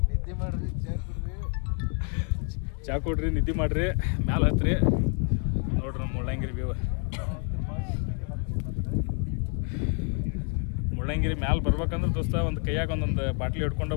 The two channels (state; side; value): quieter; right; 37.8 dB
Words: ಚಾ ಕೊಡ್ರಿ, ನಿದ್ದೆ ಮಾಡಿರಿ, ಮ್ಯಾಲೆ ಹತ್ರಿ. ನೋಡ್ರಿ ನಮ್ಮ ಮುಳ್ಳಯ್ಯನಗಿರಿ ವ್ಯೂ. ಮುಳ್ಳಯ್ಯನಗಿರಿ ಮ್ಯಾಲೆ ಬರ್ಬೇಕಂದ್ರೆ ದೋಸ್ತ ಒಂದು ಕೈಯಾಗ ಒಂದೊಂದು ಬಾಟ್ಲಿ ಹಿಡ್ಕೊಂಡು